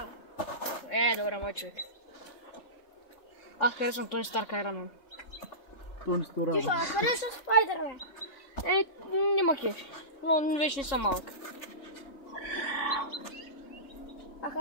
Добре, мой човек. Аз харесвам Тони Старк Айронмен. То не стора. Ти ще харесваш Спайдермен? Няма кеф. Но вече не съм малък. А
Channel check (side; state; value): right; late; 3.7 ms